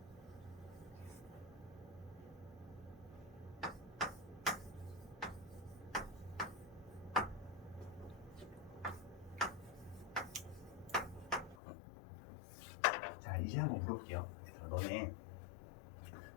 자, 이제 한번 물어볼게요. 너네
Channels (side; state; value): right; drops out; at 11.6 s